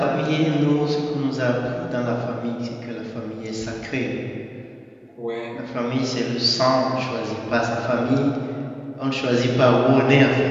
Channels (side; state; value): both; identical; correlation 1.00